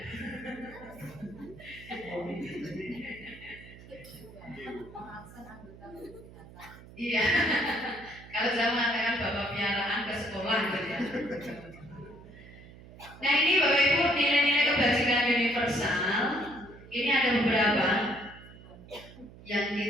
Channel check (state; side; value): noise; right; hum, 19 dB below the sound